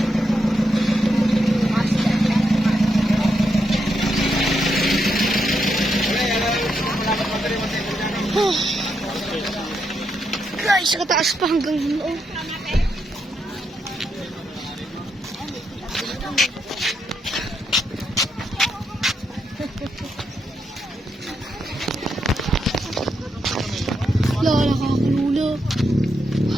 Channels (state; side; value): normal; both; correlation 0.82